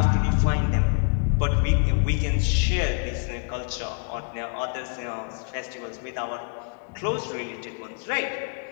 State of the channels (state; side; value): quieter; right; 37.0 dB